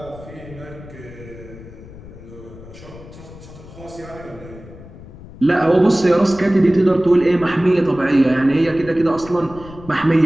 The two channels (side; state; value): left; noise; rumble, 17 dB below the sound